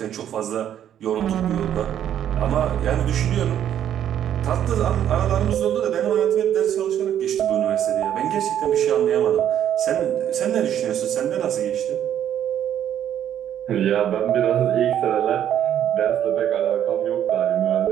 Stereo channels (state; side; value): quieter; left; 10.3 dB